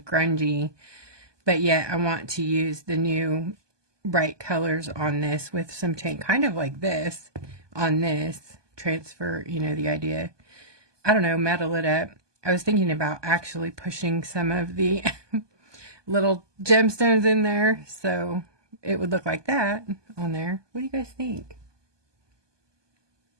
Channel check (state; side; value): late; left; 1.2 ms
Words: grungy, but yet I want to use the new bright colors on this with some paint, kind of like this on this, transfer, you know, the idea. I don't know, metal it up. I was thinking about actually pushing some of the little gemstones in there so it would look like that on there. What do you guys think?